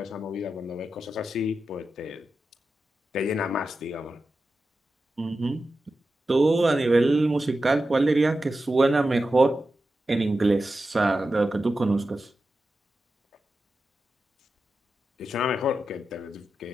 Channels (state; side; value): normal; both; correlation 0.92